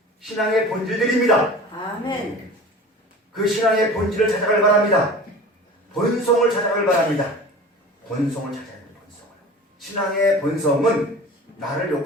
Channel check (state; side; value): normal; both; correlation 0.38